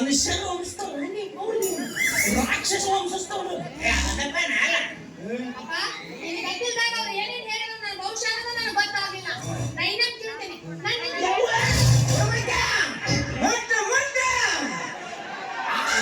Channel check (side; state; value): both; identical; correlation 1.00